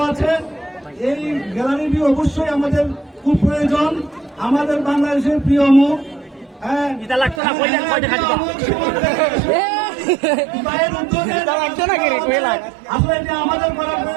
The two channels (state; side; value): drops out; left; at 7.4 s